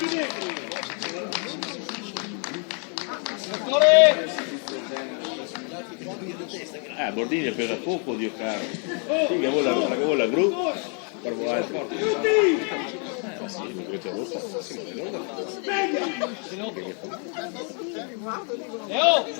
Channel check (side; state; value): right; quieter; 39.7 dB